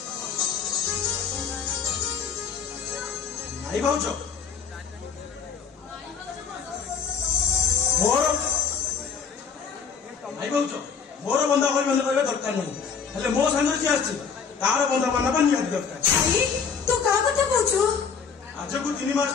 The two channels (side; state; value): right; quieter; 6.2 dB